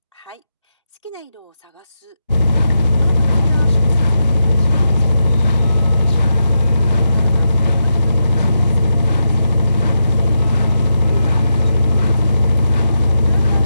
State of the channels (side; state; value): both; inverted; correlation -0.86